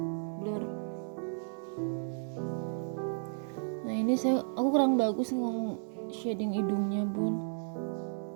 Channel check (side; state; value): left; silent; digital silence